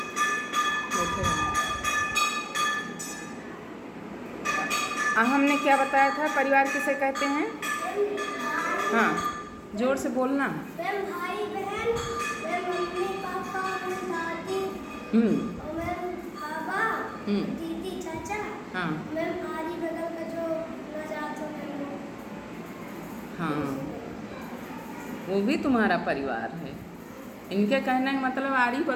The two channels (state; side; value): identical; both; correlation 1.00